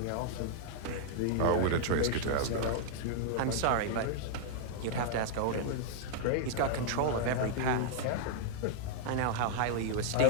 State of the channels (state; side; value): different; both; correlation -0.01